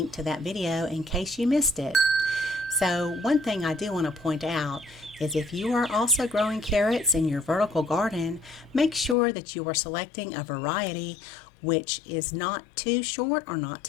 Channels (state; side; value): drops out; right; at 9.2 s